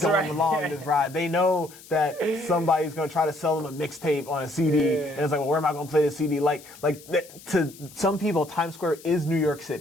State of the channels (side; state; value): left; noise; hiss, 20 dB below the sound